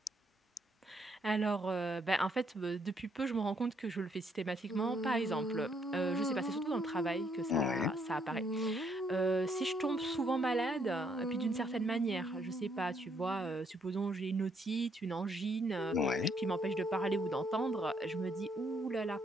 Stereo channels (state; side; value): normal; both; correlation 0.71